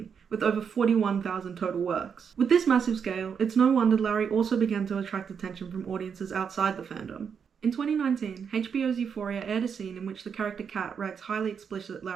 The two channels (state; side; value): quieter; left; 6.9 dB